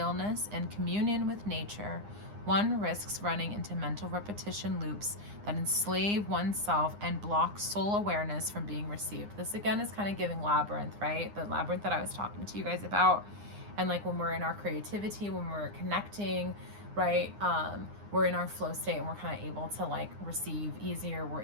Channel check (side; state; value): left; late; 9.8 ms